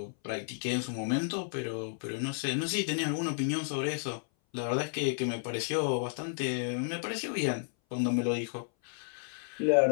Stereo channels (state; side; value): silent; right; 56 dB below the other